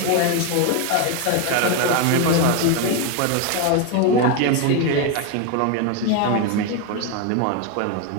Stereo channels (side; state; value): both; different; correlation 0.01